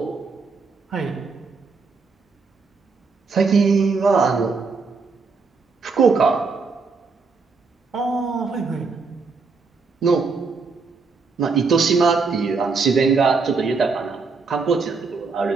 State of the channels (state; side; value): quieter; left; 4.6 dB